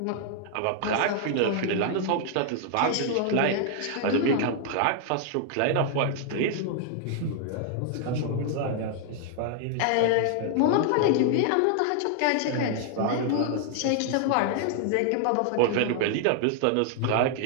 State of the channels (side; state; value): both; different; correlation 0.00